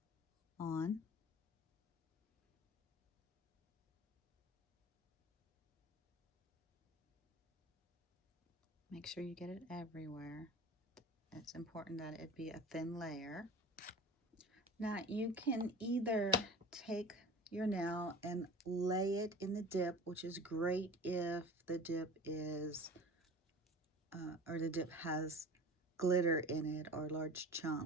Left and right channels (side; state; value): both; normal; correlation 0.37